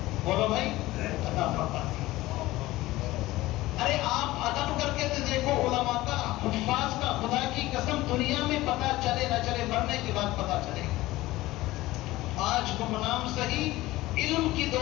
بولو بھائی عطا فرما دی. ارے آپ ادب کر کے تو دیکھو علماء کا، حفاظ کا. خدا کی قسم دنیا میں پتہ چلے نہ چلے، مرنے کے بعد پتہ چلے. آج گمنام صحیح علم کی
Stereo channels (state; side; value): quieter; right; 17.8 dB